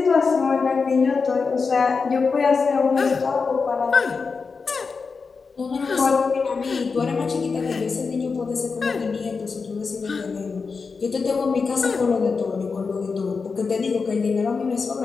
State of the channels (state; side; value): quieter; right; 4.9 dB